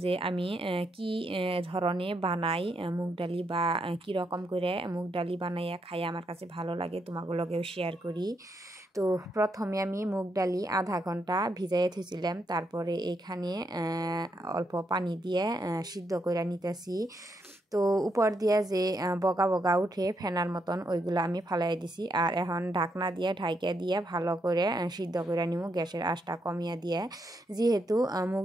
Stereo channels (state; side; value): normal; both; correlation 0.79